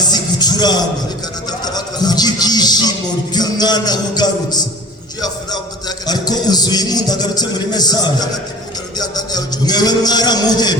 gucuranga Ariko anatafuta watu kubw'ibyishimo by'umwana ugarutse. juu ya furaha mtoto yake. Ariko uzuye impundu agarutse muri mesaje, Wakati mtu anarudia ndani ya ujumbe mwewe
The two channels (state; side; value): normal; both; correlation 0.42